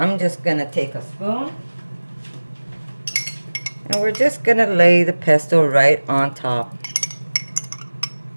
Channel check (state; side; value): inverted; both; correlation -1.00